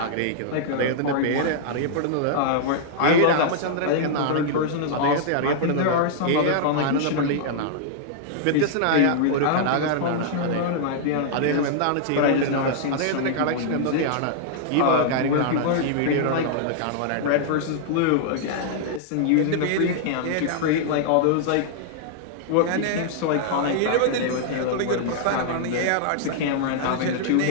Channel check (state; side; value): different; both; correlation -0.01